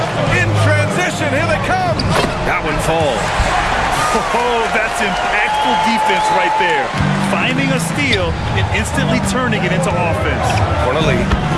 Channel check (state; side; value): identical; both; correlation 1.00